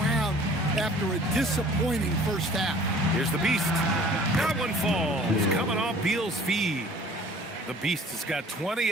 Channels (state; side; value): normal; both; correlation 0.51